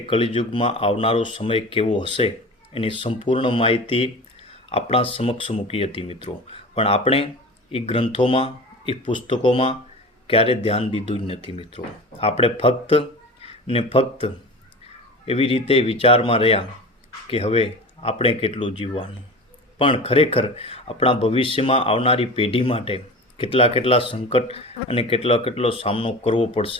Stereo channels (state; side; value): normal; both; correlation 0.34